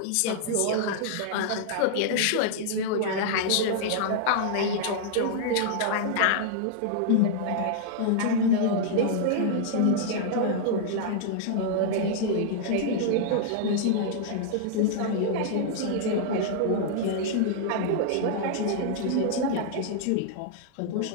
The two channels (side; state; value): both; different; correlation -0.01